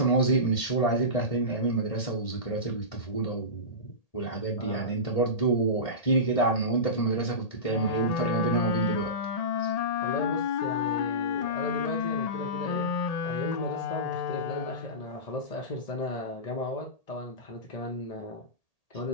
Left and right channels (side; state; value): right; late; 1.8 ms